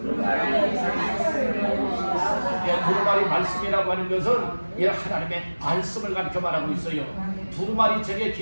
두루마리 말씀이라고 하는 것은 이 하나님의 말씀을 가르쳐 말하고 있어요. 두루마리 책에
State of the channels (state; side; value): inverted; both; correlation -1.00